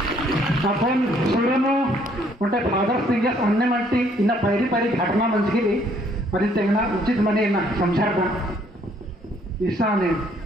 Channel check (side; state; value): both; normal; correlation 0.65